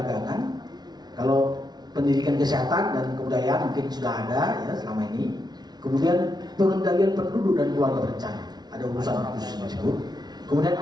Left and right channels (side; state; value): left; late; 0.19 ms